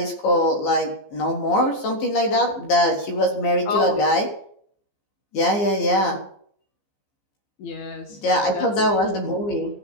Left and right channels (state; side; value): late; right; 15 ms